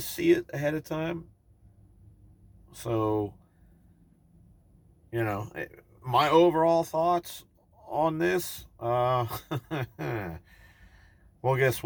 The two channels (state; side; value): identical; both; correlation 1.00